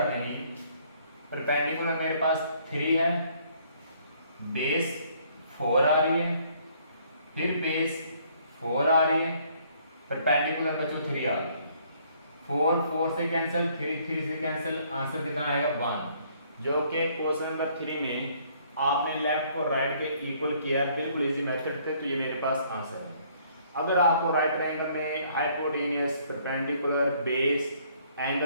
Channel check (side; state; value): both; inverted; correlation -0.63